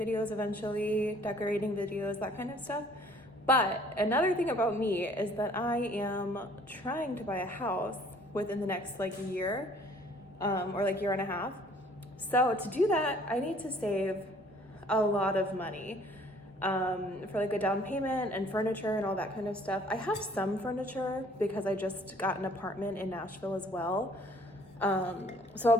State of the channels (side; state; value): both; normal; correlation 0.57